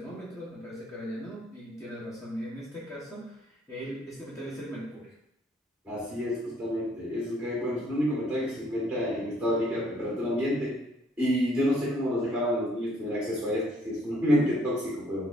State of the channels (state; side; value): normal; both; correlation 0.64